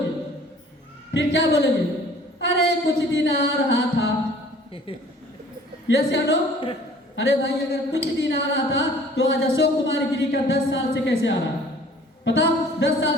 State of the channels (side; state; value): both; normal; correlation 0.51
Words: फिर क्या बोलोगे, अरे कुछ दिन आ रहा था। यस या नो? अरे भाई, अगर कुछ दिन आ रहा था, तो आज अशोक कुमार गिरी का 10 साल से कैसे आ रहा है? पता 10